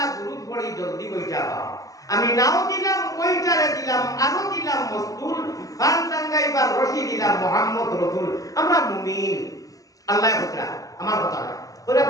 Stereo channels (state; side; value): late; right; 0.17 ms